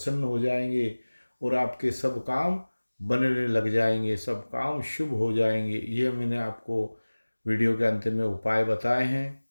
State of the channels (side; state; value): both; inverted; correlation -1.00